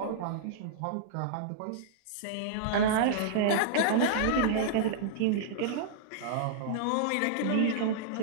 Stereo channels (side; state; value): both; different; correlation -0.02